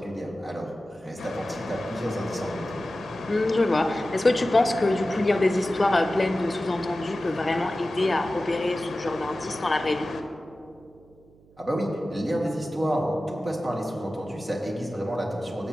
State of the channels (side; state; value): right; noise; hum, 28 dB below the sound